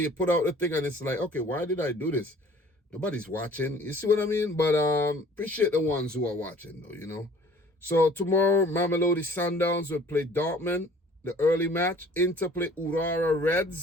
you put out the thing and it's like, okay, why did I do this? Nobody's watching. You see what I mean? But appreciate the ones who are watching though, So tomorrow, Mamelodi Sundowns will play Dortmund, the early match. Inter play Urara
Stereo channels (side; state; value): both; normal; correlation 0.51